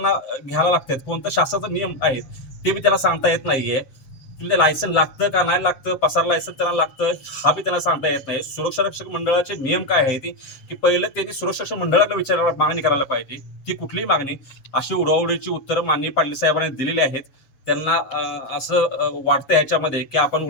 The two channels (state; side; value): late; right; 7.4 ms